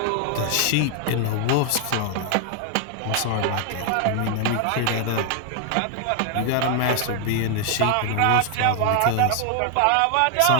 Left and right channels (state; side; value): different; both; correlation 0.00